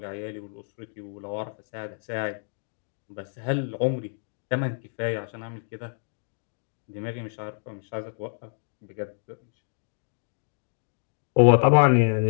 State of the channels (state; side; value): silent; right; digital silence